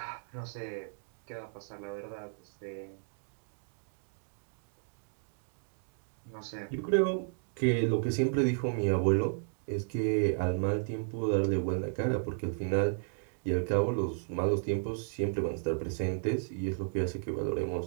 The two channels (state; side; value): silent; left; digital silence